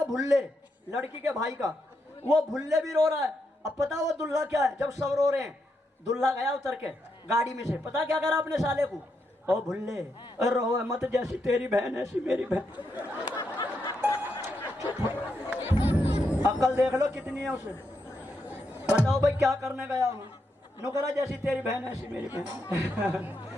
भुल्ले, लड़की के भाई का, वो भुल्ले भी रो रहा है। अब पता वो दुल्हा क्या है, जब सब रो रहे हैं दुल्हा गया उतर के गाड़ी में से, पता क्या करा अपने साले को, ओ भुल्ले रो मत, जैसी तेरी बहन ऐसी मेरी बहन। अकल देख लो कितनी है उसे, बताओ भाई क्या करने गया हूँ, नुकरा जैसी तेरी बहन ऐसी मेरी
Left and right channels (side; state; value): both; normal; correlation 0.82